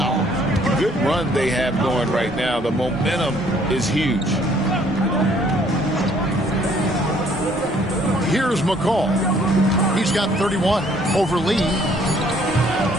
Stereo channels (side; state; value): both; normal; correlation 0.62